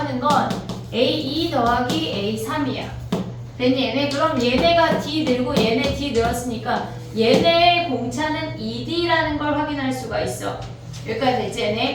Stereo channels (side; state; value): both; identical; correlation 1.00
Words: 건 A2 더하기 A3이야. 됐니? 얘네? 그럼 얘네가 D 늘고 얘네 D 늘었으니까 얘네의 공차는 ED라는 걸 확인할 수가 있어. 여기까지 됐지?